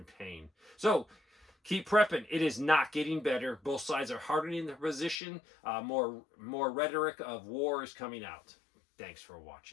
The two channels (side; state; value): right; drops out; at 5.2 s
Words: pain. So keep prepping. It is not getting better. Both sides are hardening their position. More rhetoric of war is coming out. Thanks for